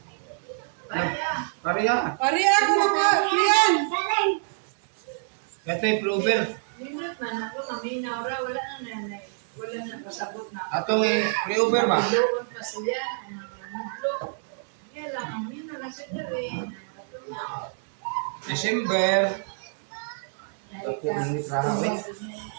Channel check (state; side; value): silent; left; digital silence